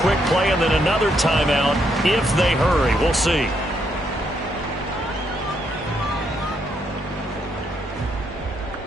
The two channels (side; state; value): both; normal; correlation 0.76